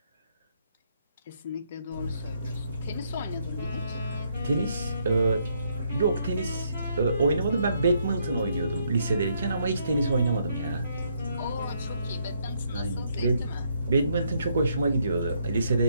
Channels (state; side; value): inverted; both; correlation -0.73